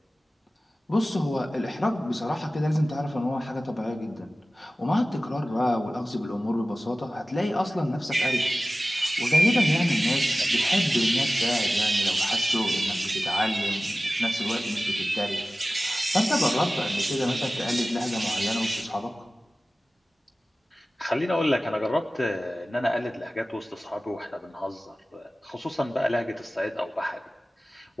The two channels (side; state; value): both; normal; correlation 0.96